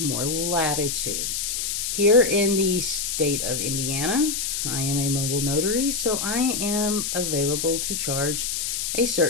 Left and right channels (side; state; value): left; noise; hiss, 1 dB below the sound